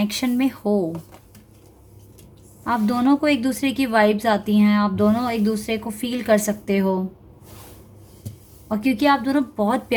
में हो। आप दोनों को एक दूसरे की वाइब्स आती हैं, आप दोनों एक दूसरे को फील कर सकते हो, और क्योंकि आप दोनों बहुत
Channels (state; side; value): identical; both; correlation 1.00